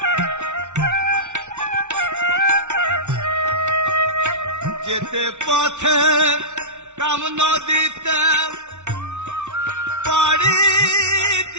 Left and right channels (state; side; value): late; left; 0.83 ms